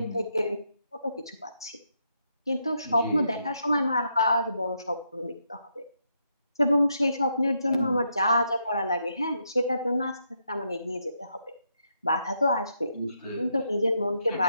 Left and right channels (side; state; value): both; inverted; correlation -0.79